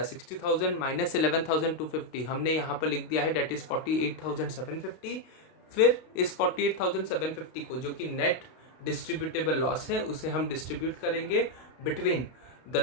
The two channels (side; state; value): right; late; 32 ms